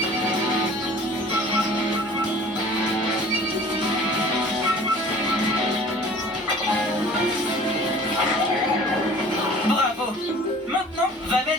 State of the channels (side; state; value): both; normal; correlation 0.46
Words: Bravo. Maintenant, va